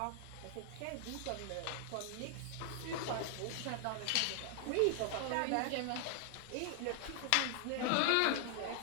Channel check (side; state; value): both; different; correlation 0.00